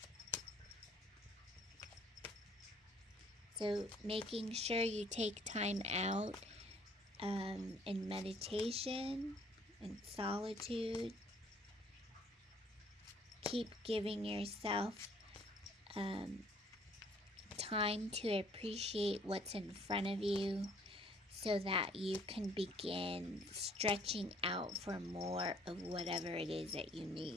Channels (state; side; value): normal; both; correlation 0.59